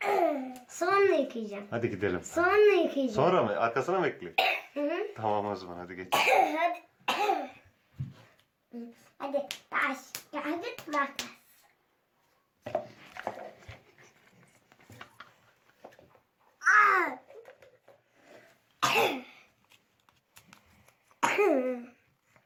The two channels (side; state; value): both; identical; correlation 1.00